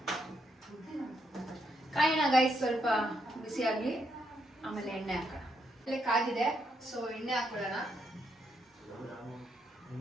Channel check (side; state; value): both; normal; correlation 0.78